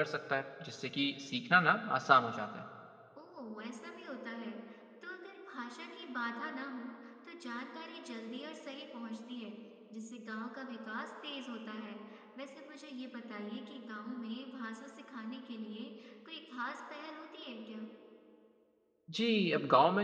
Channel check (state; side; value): identical; both; correlation 1.00